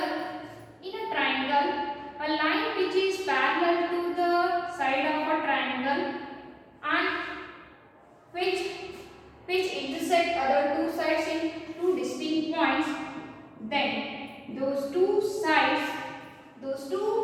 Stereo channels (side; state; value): both; identical; correlation 1.00